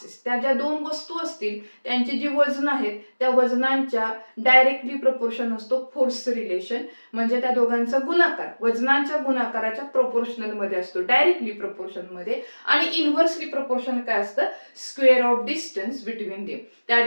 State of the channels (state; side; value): inverted; both; correlation -1.00